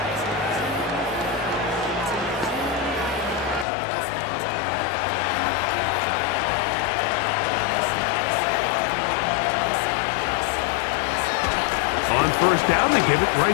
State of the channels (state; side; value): drops out; right; at 3.7 s